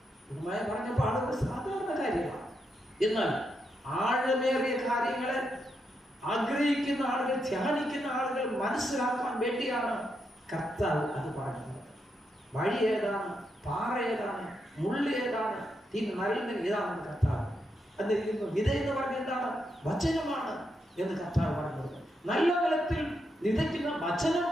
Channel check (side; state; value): both; normal; correlation 0.82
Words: പറഞ്ഞപ്പോൾ ആളുകൾ സാധാരണ കാര്യമാണ്. എന്നാൽ ആഴമേറിയ കാര്യങ്ങളെ ആഗ്രഹിക്കുന്ന ആളുകൾ, ധ്യാനിക്കുന്ന ആളുകൾ മനസ്സിലാക്കാൻ വേണ്ടിയാണ് കർത്താവ് അത് പറഞ്ഞത്. വഴി ഏതാണ്, പാറ ഏതാണ്, മുള്ളി ഏതാണ്, നരളിന് ഏതാണെന്ന് കർത്താവ് എന്നിരിക്കുന്നു. വിത എന്ന് പറഞ്ഞ എന്താണ്? വചനമാണ് എന്ന് കർത്താവ് പറഞ്ഞത്. നല്ല നിലത്തിൽ വിതയ്ക്കുന്ന വചനം